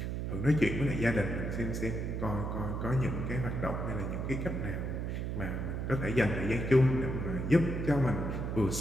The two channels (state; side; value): noise; right; hum, 2 dB below the sound